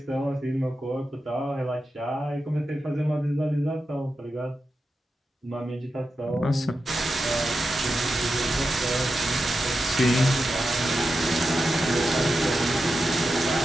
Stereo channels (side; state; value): both; normal; correlation 0.90